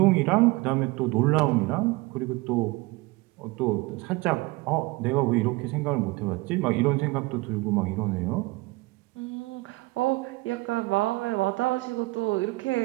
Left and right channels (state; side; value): quieter; left; 22.8 dB